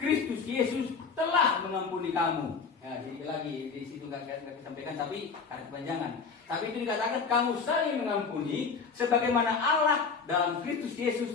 Yesus telah mengampuni kamu. Ya, sedikit lagi di situ nggak disampaikan tapi karena kepanjangan. Tapi itu dikatakan kamu saling mengampuni sebagaimana Allah dalam Kristus Yesus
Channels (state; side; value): quieter; right; 5.3 dB